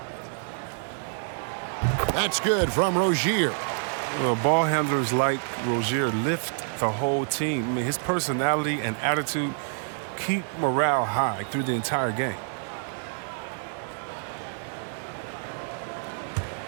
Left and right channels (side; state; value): left; silent; digital silence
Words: That's good from Rozier. Well, ball handlers like Rozier lift the whole team. I mean, his personality and attitude keep morale high through the entire game.